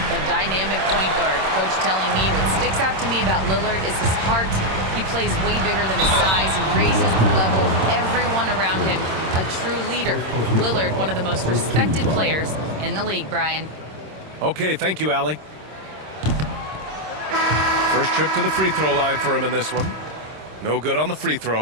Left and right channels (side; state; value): left; late; 26 ms